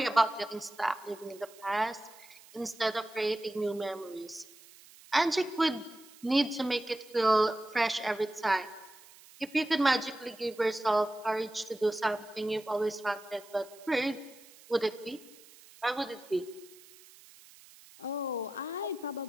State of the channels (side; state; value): right; noise; hiss, 22 dB below the sound